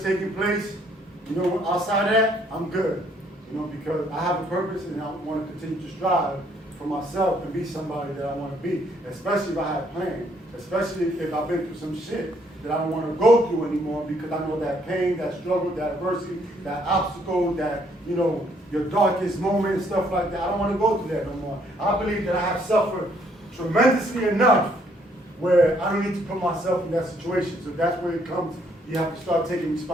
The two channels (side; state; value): both; normal; correlation 0.67